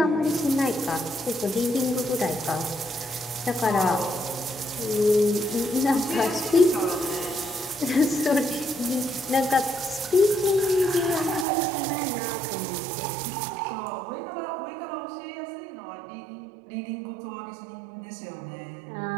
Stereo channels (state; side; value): drops out; left; at 11.5 s